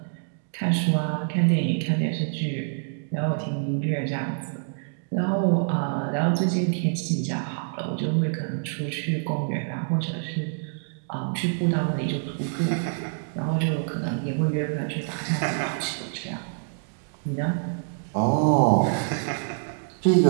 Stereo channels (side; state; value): left; silent; digital silence